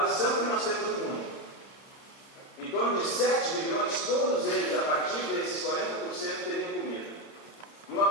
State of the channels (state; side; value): late; right; 30 ms